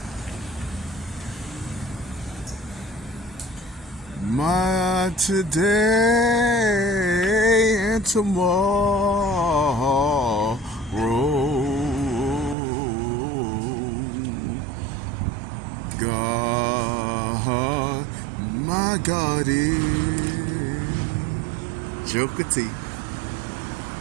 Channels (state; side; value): drops out; left; at 12.6 s